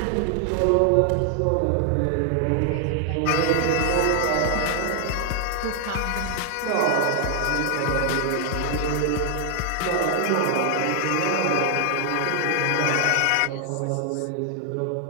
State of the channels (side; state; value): both; different; correlation 0.00